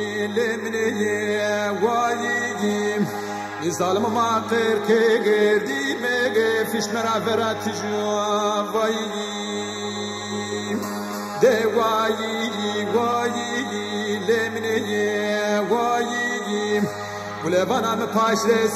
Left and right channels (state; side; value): identical; both; correlation 1.00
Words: lemneye vayiyim Nizalım maqir ke gerdime gefiş meraverat juvayiyim De vayi lemneye vayiyim Gulevanam paşre